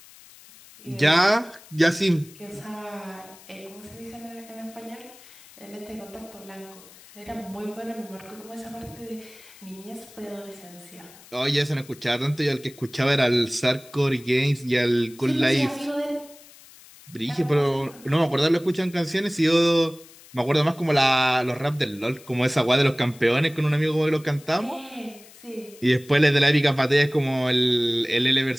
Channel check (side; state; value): left; noise; hiss, 22 dB below the sound